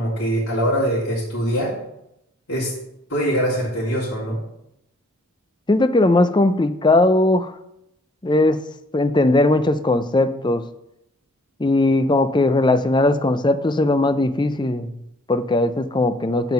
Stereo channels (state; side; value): normal; both; correlation 0.59